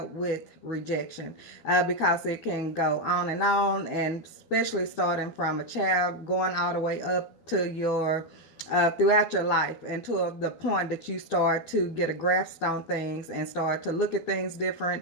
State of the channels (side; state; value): right; late; 12 ms